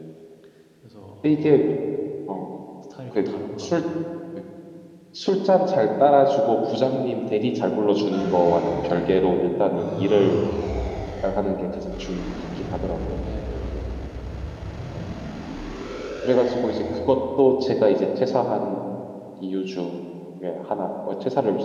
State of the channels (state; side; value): identical; both; correlation 1.00